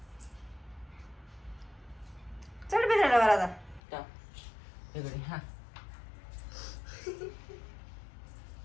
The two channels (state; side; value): drops out; right; at 3.8 s